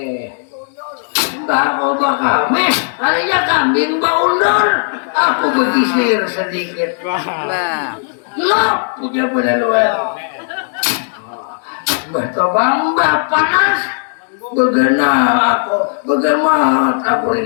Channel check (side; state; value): right; silent; digital silence